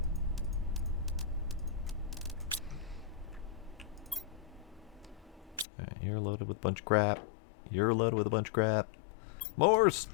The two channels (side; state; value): right; drops out; at 5.7 s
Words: Alright, you're loaded with a bunch of crap. You're loaded with a bunch of crap. More